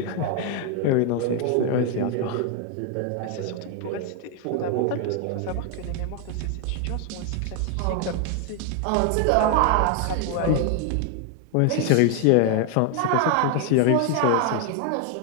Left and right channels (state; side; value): different; both; correlation 0.01